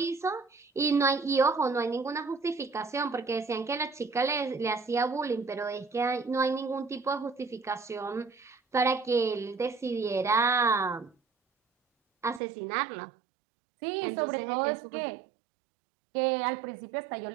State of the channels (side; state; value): left; drops out; at 12.4 s